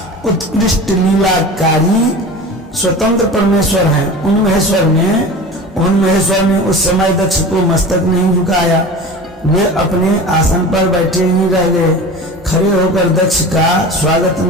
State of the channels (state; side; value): normal; both; correlation 0.34